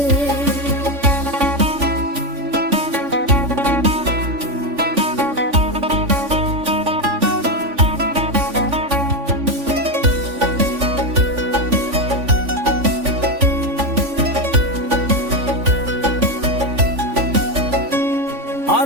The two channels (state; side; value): late; left; 3.5 ms